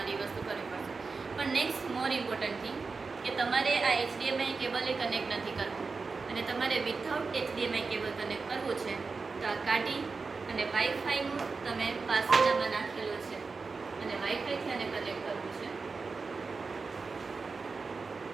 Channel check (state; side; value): quieter; left; 4.4 dB